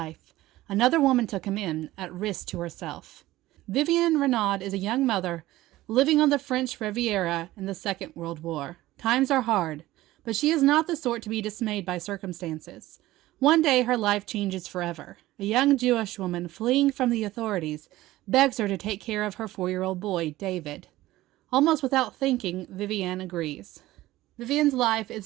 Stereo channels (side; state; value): left; quieter; 16.6 dB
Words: Another woman took him in, at risk to herself. Vivienne Renaud is a young mother living on the French Riviera in the Second World War. Times are hard, but she is not the sort to be dismayed by circumstances. One day her life changes forever. A young Jewish woman fleeing from the authorities begs her to take care of her 4-year-old boy, David. Almost without thinking, Vivienne agrees. Vivienne's life